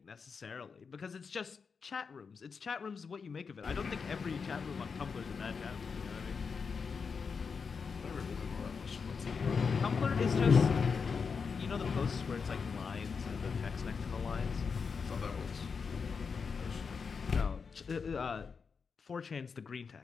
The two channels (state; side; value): quieter; right; 5.5 dB